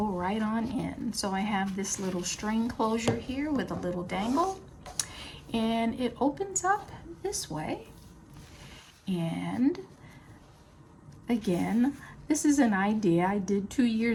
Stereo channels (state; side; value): identical; both; correlation 1.00